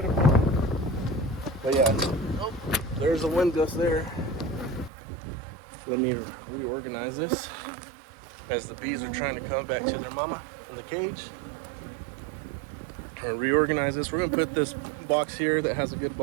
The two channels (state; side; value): drops out; left; at 4.9 s